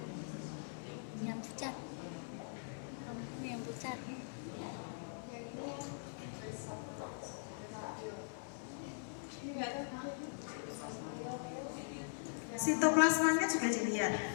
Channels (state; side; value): silent; right; 50 dB below the other